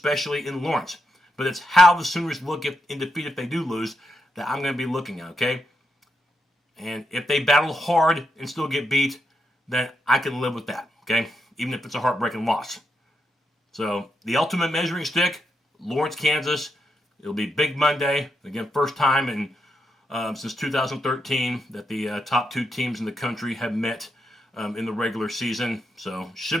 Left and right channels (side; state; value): both; normal; correlation 0.82